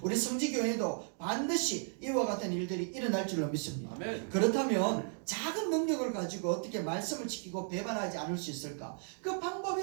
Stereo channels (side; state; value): left; silent; 55 dB below the other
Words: 우리 성지교회도 반드시 이와 같은 일들이 일어날 줄로 믿습니다. 그렇다면 작은 능력을 가지고 어떻게 말씀을 지키고 배반하지 않을 수 있을까? 그 방법이